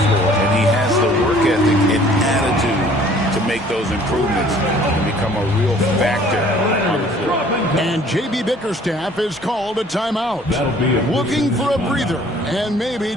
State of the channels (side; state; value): both; normal; correlation 0.55